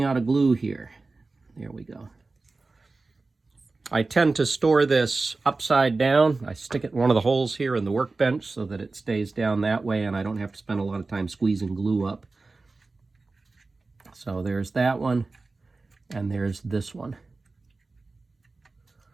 out of glue here. There we go. I tend to store this upside down. I stick it in one of the holes here in the workbench so that it stays down that way and I don't have to spend a lot of time squeezing glue up. So there's that one. And there's this one.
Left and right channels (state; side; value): quieter; left; 3.6 dB